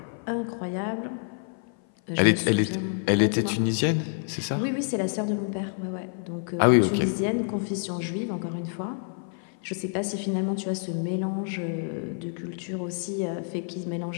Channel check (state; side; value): silent; right; 56 dB below the other